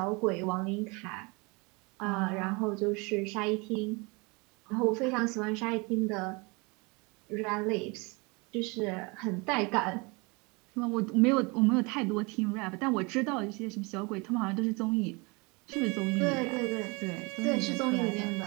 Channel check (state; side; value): quieter; left; 27.9 dB